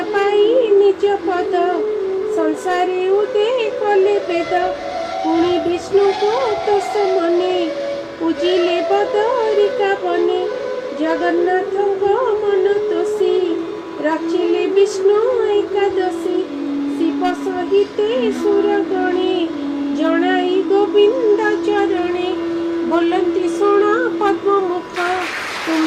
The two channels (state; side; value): identical; both; correlation 1.00